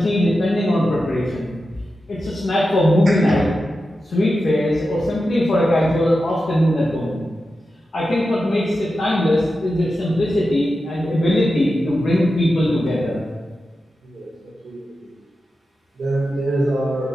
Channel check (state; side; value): normal; both; correlation 0.91